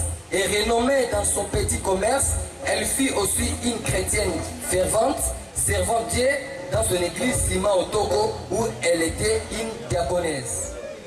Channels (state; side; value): identical; both; correlation 1.00